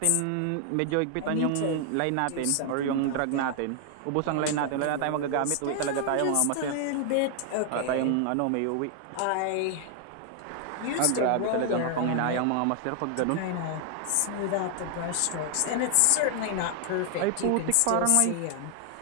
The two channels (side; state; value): both; different; correlation 0.00